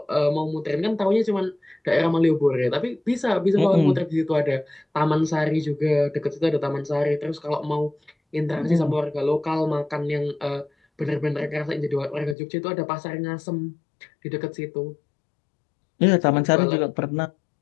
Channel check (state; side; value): drops out; right; at 12.4 s